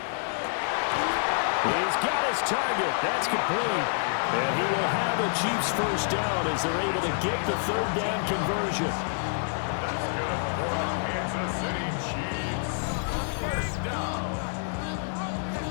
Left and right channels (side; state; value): right; silent; digital silence